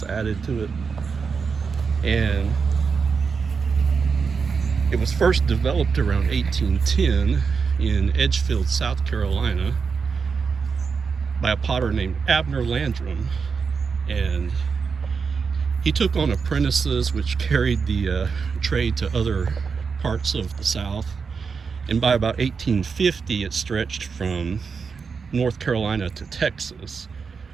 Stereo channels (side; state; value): left; quieter; 5.5 dB